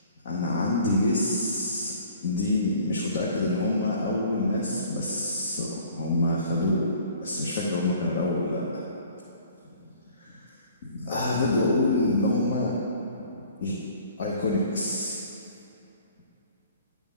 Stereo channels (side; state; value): both; inverted; correlation -0.52